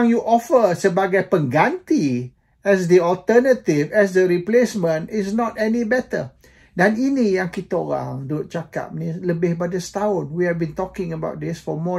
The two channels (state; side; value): identical; both; correlation 1.00